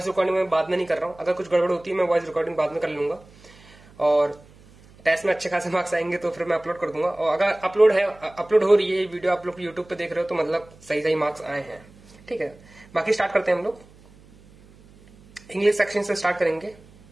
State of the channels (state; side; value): noise; right; hum, 25 dB below the sound